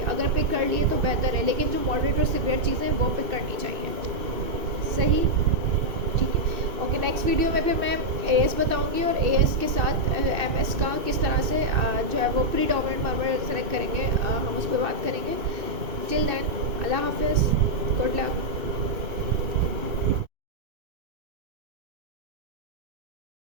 अगर पिक कर लिए तो बेहतर है, लेकिन जो मॉडरेट और सिवियर चीज़ें हैं वो पिक करनी चाहिए। सही, ठीक है। ओके, नेक्स्ट वीडियो में फिर मैं AS बताऊंगी और AS के साथ MS का किस तरह से जो है वो प्रीडोमिनेंट मर्मर सेलेक्ट करेंगे, हम उस पर बात करेंगे। टिल देन, अल्लाह हाफिज़, गुड लक।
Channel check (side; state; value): left; late; 2.5 ms